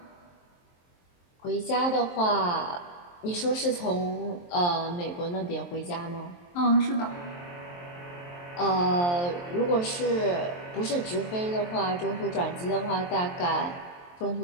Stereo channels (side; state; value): right; late; 23 ms